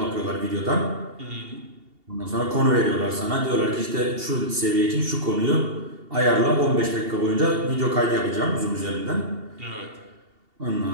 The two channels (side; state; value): left; late; 2.7 ms